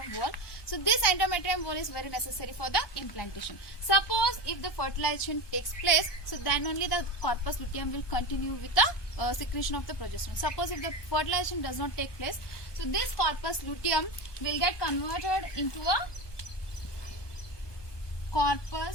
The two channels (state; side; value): late; right; 1.2 ms